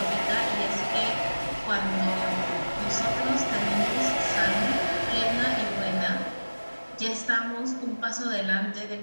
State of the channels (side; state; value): both; inverted; correlation -1.00